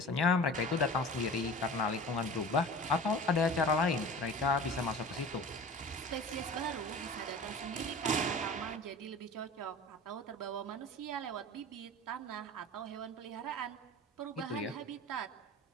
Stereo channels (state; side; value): normal; both; correlation 0.38